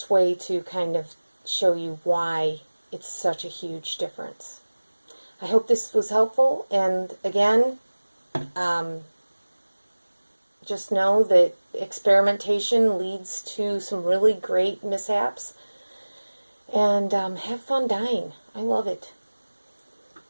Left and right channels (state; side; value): inverted; both; correlation -1.00